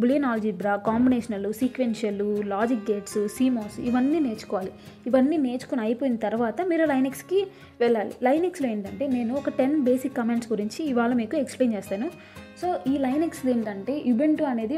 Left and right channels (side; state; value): both; identical; correlation 1.00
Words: Boolean algebra, combinational, sequential, logic gates, CMOS ఇవన్నీ నేర్చుకోవాలి. ఇవన్నీ నేర్చుకుని అయిపోయిన తర్వాత మీరు లైనెక్స్కి వెళ్ళాలి. లైనెక్స్లో ఏంటంటే నేను ఒక 10 బేసిక్ కమాండ్స్ గురించి ఇవాళ మీకు ఎక్స్ప్లెయిన్ చేస్తాను. సో ఈ లైనెక్స్ ఏంటంటే యుబెంటు అనేది